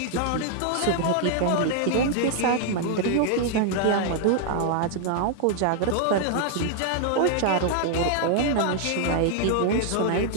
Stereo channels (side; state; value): both; different; correlation 0.00